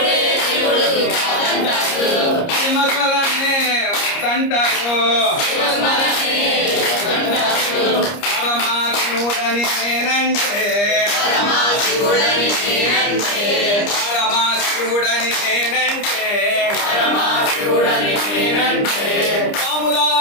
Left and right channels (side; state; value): right; late; 30 ms